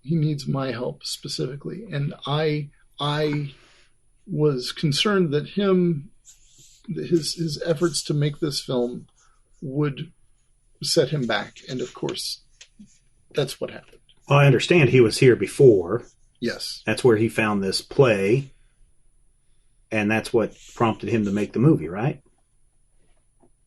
He needs my help specifically, and I was concerned that his efforts to make this film would set him back, and of course, that's what happened. Well, I understand he was here before. Yes. That's where he found this play, and that's what prompted him to make the movie, right?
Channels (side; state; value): both; identical; correlation 1.00